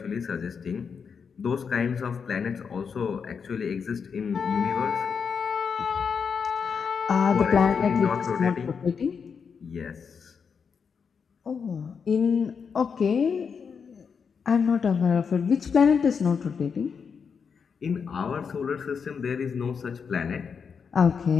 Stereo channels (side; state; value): right; quieter; 6.2 dB